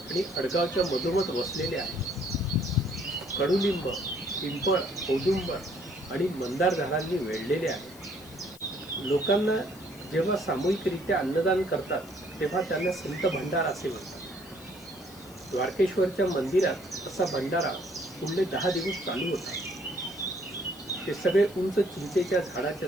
अडगावच्या मधोमध वसलेले आहे. कडुलिंब, पिंपळ, औदुंबर आणि मंदार झाडांनी वेढलेले आहे. लोकांना जेव्हा सामूहिकरित्या अन्नदान करतात तेव्हा त्यांना संत भंडारा असे म्हणतात. द्वारकेश्वरच्या मंदिरात असा भंडारा पुढले 10 दिवस चालू होता. ते सगळे उंच चिंचेच्या झाडाच्या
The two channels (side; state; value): left; noise; hiss, 21 dB below the sound